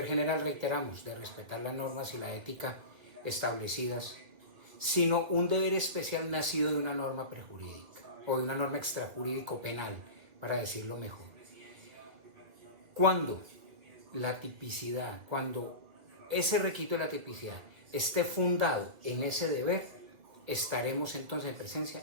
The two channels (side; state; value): left; late; 2.0 ms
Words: general, reiteramos, de respetar las normas y la ética establecidas, sino un deber especial nacido de una norma prejurídica o de una norma extrajurídico penal, para decirlo mejor. Cuando la tipicidad, cuando ese requisito de la tipicidad esté fundado en ese deber, estaremos entonces en presencia